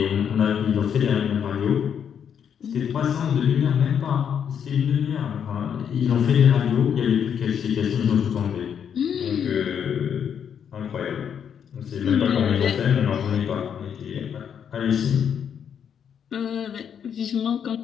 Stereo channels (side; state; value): right; quieter; 8.0 dB